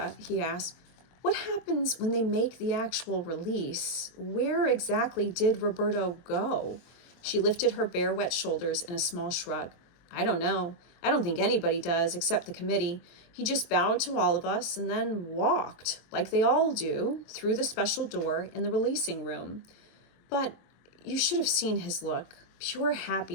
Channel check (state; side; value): late; right; 23 ms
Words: he asked, What happens when they make the actual release? Where exactly did Roberto go? She lifted her bare, wet shoulders in a small shrug. I don't know. I don't think anybody does, except the committee. He just bowed to all of us and then walked, like they all do, through the special door in the releasing room. But you should have seen his look. Pure